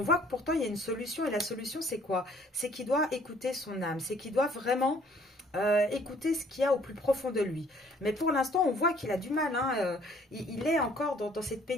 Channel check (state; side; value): normal; both; correlation 0.59